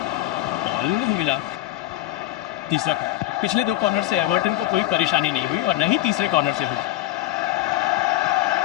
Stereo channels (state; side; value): quieter; right; 15.1 dB